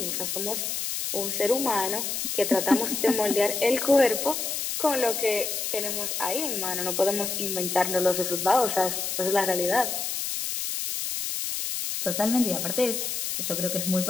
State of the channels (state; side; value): noise; left; hiss, 2 dB below the sound